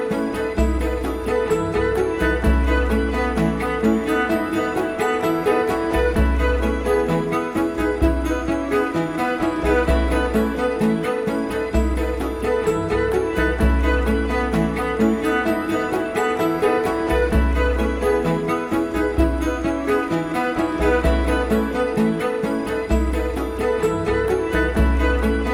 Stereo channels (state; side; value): identical; both; correlation 1.00